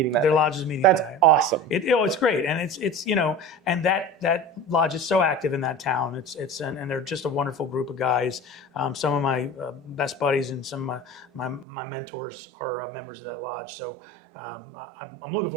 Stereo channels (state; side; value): drops out; left; at 11.7 s